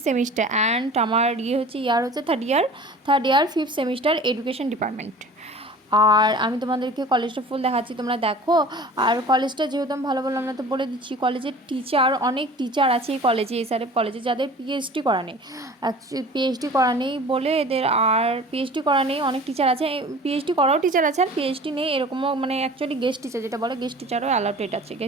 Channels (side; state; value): both; normal; correlation 0.42